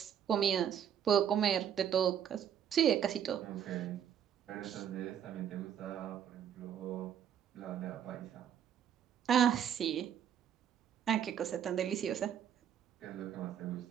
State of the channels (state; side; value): quieter; left; 9.2 dB